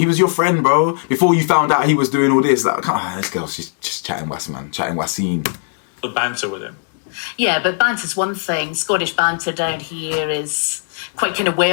was your friend, bro. Before you found out he was doing all this, like, this girl's just chatting was, man, chatting waseen. The banter with him. Yeah, but banter's one thing. Scottish banter down here is quite kind of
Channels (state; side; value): silent; right; digital silence